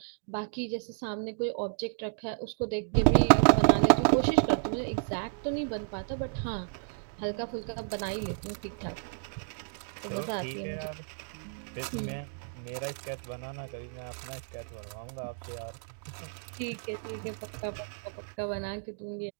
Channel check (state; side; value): silent; left; digital silence